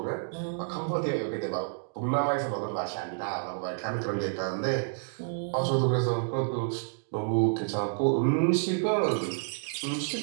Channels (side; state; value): left; silent; digital silence